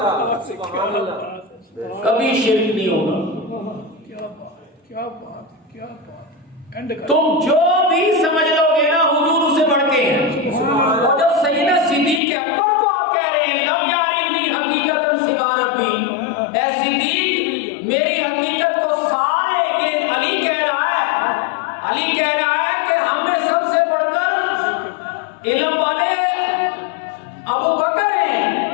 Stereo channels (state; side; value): drops out; right; at 12.2 s